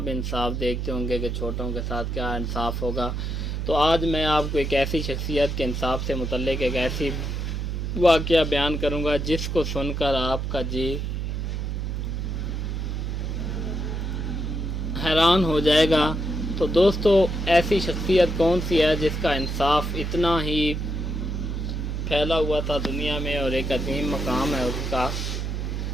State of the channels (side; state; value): right; noise; hum, 2 dB below the sound